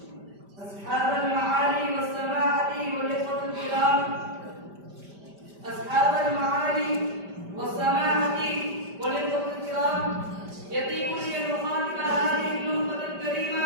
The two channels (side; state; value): left; late; 5.1 ms